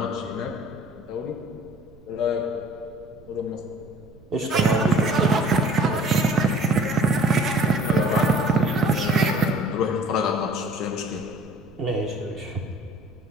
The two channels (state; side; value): noise; right; rumble, 24 dB below the sound